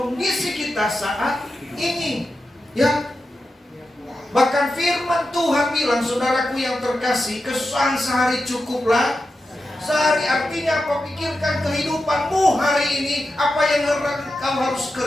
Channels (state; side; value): normal; both; correlation 0.90